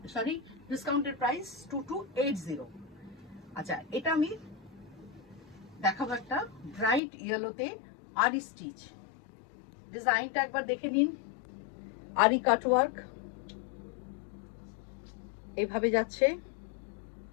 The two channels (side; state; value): right; drops out; at 7.0 s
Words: সরি, ডিসকাউন্টেড প্রাইস 2280। আচ্ছা, এটা আমি দেখাবো একটা ব্রাইট ইয়েলোতে আরি স্টিচ। ডিজাইনটা একবার দেখে নিন, আরি কাটওয়ার্ক এইভাবে যাচ্ছে।